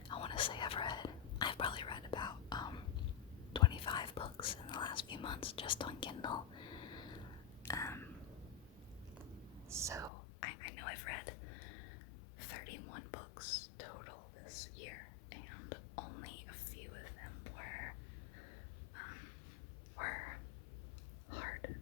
I want to say I've probably read about 25 books in the last few months just on Kindle. So I know I've read 31 books total this year, and only a few of them were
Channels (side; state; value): right; drops out; at 10.1 s